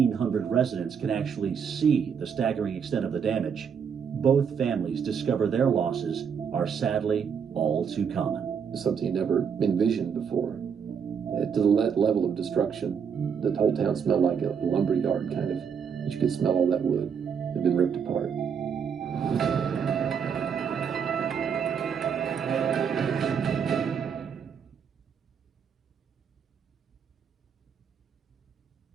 residents can actually see the staggering extent of the damage, both families discover their losses are sadly all too common. It's something you never envisioned before. To the level of destruction, the whole town smelled like a lumberyard kind of. But you could smell all that wood. It had been ripped apart.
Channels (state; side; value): quieter; left; 7.0 dB